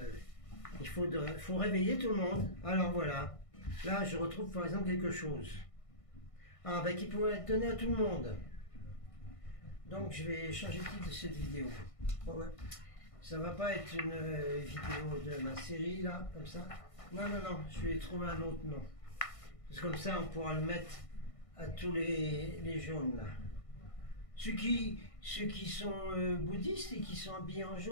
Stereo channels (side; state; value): right; late; 1.5 ms